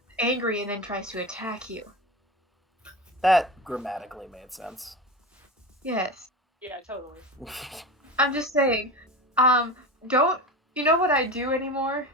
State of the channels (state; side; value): normal; both; correlation 0.27